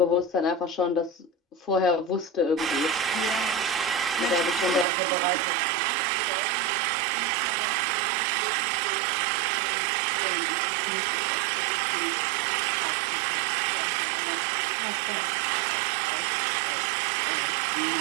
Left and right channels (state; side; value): drops out; left; at 4.9 s